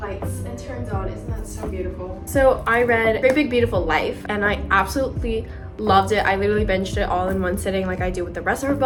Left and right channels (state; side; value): identical; both; correlation 1.00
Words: and turns on. Isn't that so beautiful? So I read Great Big Beautiful Life and I absolutely loved it. I literally binged it all in one sitting like I do with the rest of her